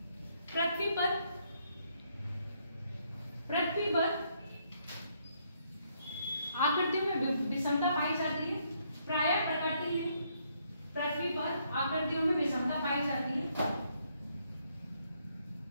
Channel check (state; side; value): inverted; both; correlation -0.72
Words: पृथ्वी पर आकृति में विषमता पाई जाती है। प्राय प्रकृति में पृथ्वी पर आकृतियों में विषमता पाई जाती है।